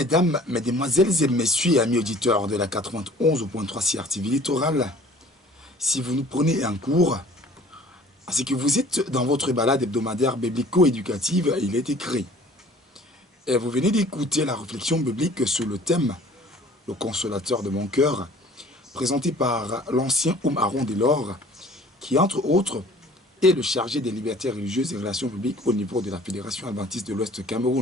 mesdemoiselles et messieurs, amis auditeurs de la 91.3 CRTV Littoral, si vous nous prenez en cours, c'est que vous êtes dans votre balade hebdomadaire biblico-éducative, il est écrit. Et vous venez d'écouter la réflexion biblique sur le thème « Le consolateur de mon cœur », présenté par l'ancien Aaron Delors, qui entre autres est le chargé des libertés religieuses et relations publiques au niveau de la Fédération adventiste de l'Ouest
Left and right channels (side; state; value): both; normal; correlation 0.51